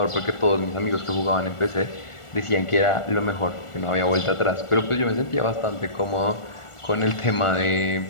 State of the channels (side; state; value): right; late; 1.4 ms